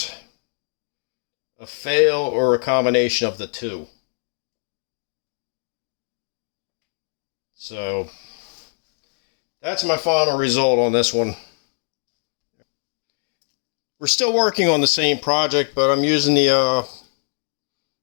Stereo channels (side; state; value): right; silent; 62 dB below the other